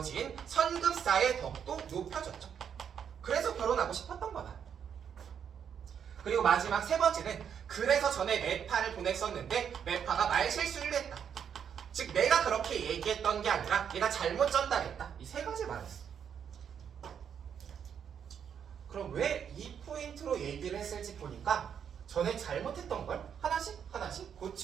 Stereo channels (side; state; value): left; quieter; 8.0 dB